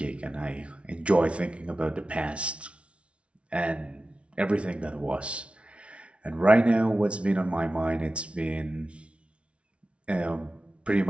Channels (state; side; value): late; left; 0.060 ms